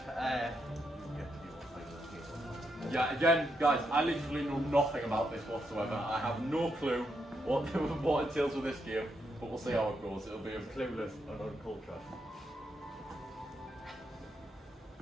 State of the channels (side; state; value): both; normal; correlation 0.81